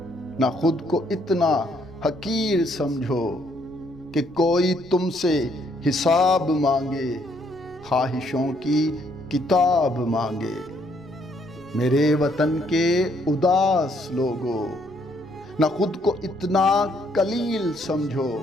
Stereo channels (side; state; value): right; noise; rumble, 25 dB below the sound